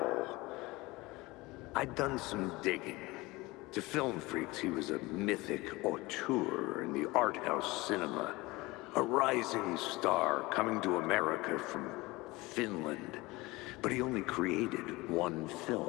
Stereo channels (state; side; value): quieter; right; 21.8 dB